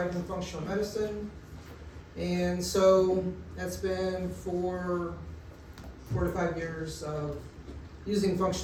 in functional medicine. And so that's been 4 to 5 years of using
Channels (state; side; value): identical; both; correlation 1.00